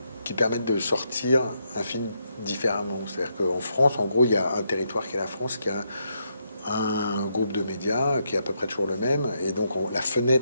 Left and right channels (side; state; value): both; inverted; correlation -0.79